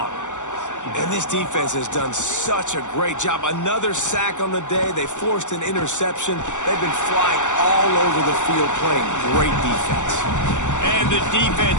And this defense has done such a great job. Another sack on the day. They forced an interception. They've been flying all over the field playing great defense. And the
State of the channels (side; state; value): right; late; 0.85 ms